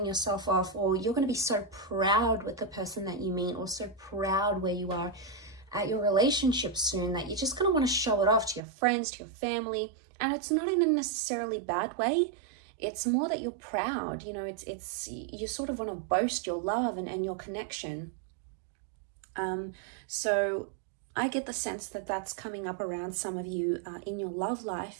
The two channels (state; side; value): drops out; left; at 8.6 s